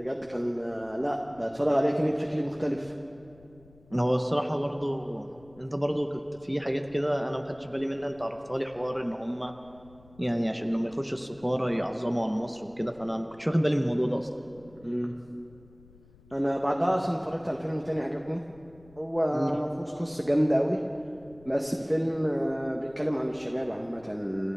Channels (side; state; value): left; noise; rumble, 25 dB below the sound